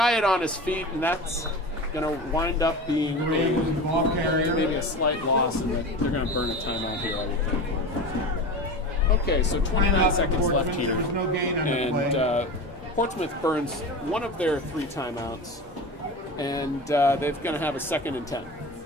it on his feet, and that's going to wind up being maybe a slight loss, and they're going to burn a timeout here, I would think. Okay, so 29 seconds left here, and Portsmouth burns one of their 3 timeouts, and they're going to have a 2nd and 10.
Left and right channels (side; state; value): both; normal; correlation 0.29